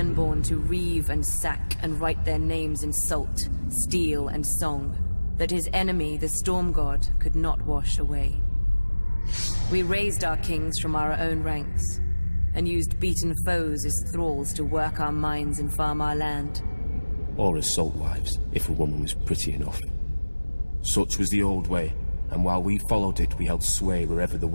to reave and sack and write their names in salt, steel, and song, that his enemy, the Storm God, could not wash away. We raised our kings from our own ranks, and used beaten foes as thralls to work our mines and farm our land. Or as salt wives, if a woman was pretty enough. Such was the old way, and while we followed it, we held sway wherever the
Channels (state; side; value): inverted; both; correlation -1.00